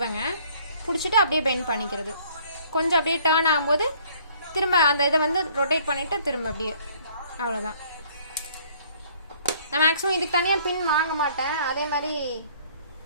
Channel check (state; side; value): inverted; both; correlation -0.58